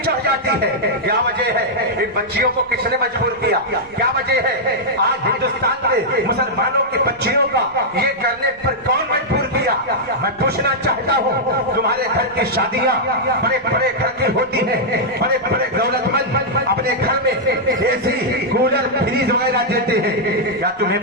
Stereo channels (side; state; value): right; noise; rumble, 28 dB below the sound